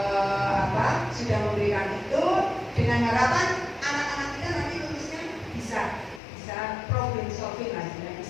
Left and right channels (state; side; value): drops out; right; at 6.2 s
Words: sudah memberikan itu dengan harapan anak-anak kita nanti lulusnya bisa problem solving lah,